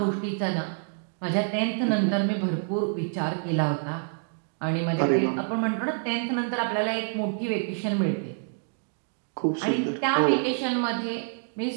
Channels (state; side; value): silent; left; 59 dB below the other